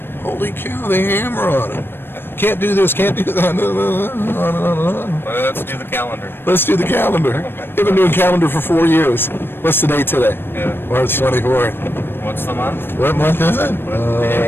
Holy cow, they hammer on him. Can't do this, can't do that, on and on and on. Well, let's do the calendar. Let's do the calendar. They've been doing calendar for 4 years. What's the date today? Yeah. March 24th. What's the month? What month is it?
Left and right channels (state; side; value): late; right; 0.10 ms